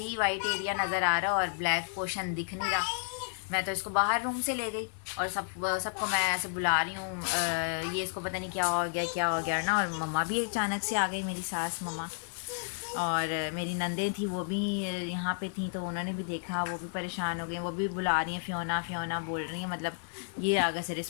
ही वाइट एरिया नज़र आ रहा और ब्लैक पोर्शन दिख नहीं रहा। मैं तो इसको बाहर रूम से ले गई और सबको मैं ऐसे बुला रही हूँ, ये इसको पता नहीं क्या हो गया ना। और मम्मा भी अचानक से आ गई, मेरी सास मम्मा, और मेरी नंदें थी वो भी यहाँ पे थी, तो उन्होंने भी देखा, वो भी परेशान हो गई, वो भी बुला रही हैं फ़ियोना फ़ियोना बोल रही हैं, मतलब ये आगे से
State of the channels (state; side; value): silent; right; digital silence